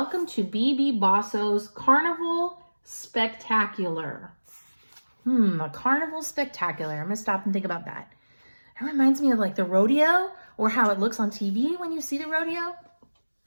to BB Bosso's Carnival Spectacular." A carnival spectacular. I'm going to stop and think about that. It reminds me of like the rodeo, or how it looks on TV when you see the rodeo.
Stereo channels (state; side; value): inverted; both; correlation -1.00